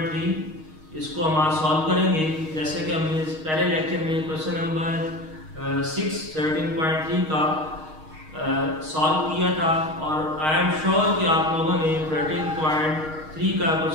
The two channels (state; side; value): late; left; 6.4 ms